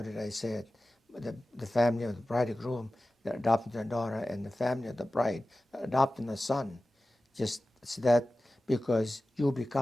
did I say it? The family of the bridegroom, they're adopting their daughter, and the family of the bride, adopting a son. Just it's that because you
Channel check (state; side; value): normal; both; correlation 0.95